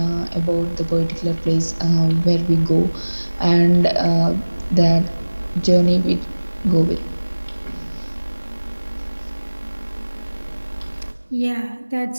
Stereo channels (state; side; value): inverted; both; correlation -1.00